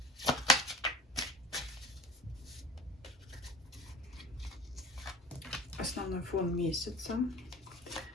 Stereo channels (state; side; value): normal; both; correlation 0.39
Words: Основной фон месяца.